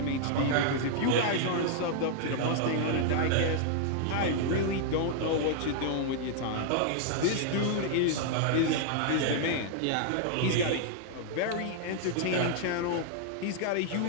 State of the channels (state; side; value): different; both; correlation -0.01